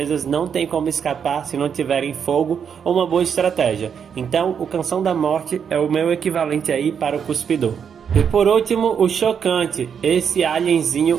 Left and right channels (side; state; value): left; quieter; 7.4 dB